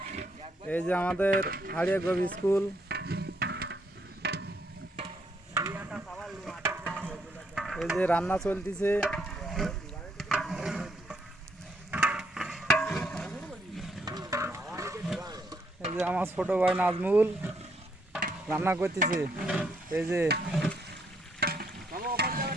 এই যে আমাদের হাড়িয়াগোপ স্কুল। এই যে রান্না চলতেছে। এই যে আমার ছোট ভাই নাজমুল রান্না করতেছে। এই যে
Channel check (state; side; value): normal; both; correlation 0.73